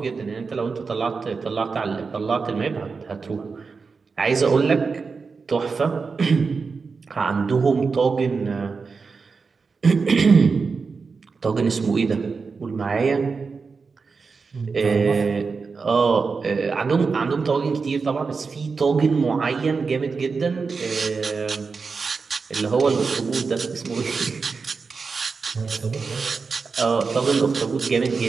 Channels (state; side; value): quieter; left; 4.8 dB